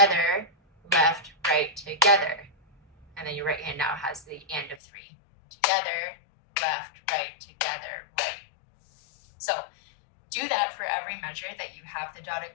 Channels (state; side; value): drops out; right; at 4.8 s